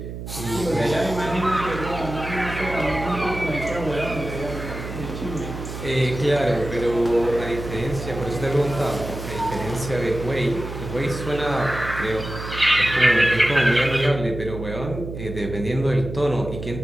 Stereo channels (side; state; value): right; noise; hum, 8 dB below the sound